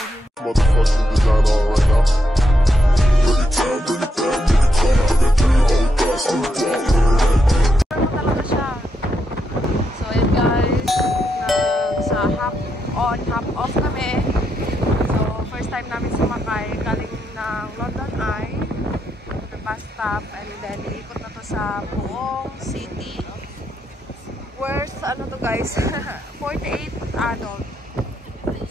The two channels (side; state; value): both; normal; correlation 0.81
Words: motherfucking design on right now. Bring it down, bring it down, bring it down. I got 3 old guys on the block. Talaga siya. So yun guys, sa half on, half off kami. So first time namin sumakay galing ng London Eye to the bus stop, and then iikot na to sa buong city. Where's ano to guys? 48 adult.